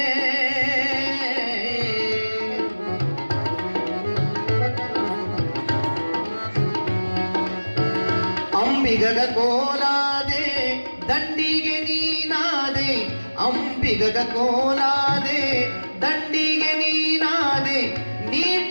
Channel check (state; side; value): inverted; both; correlation -1.00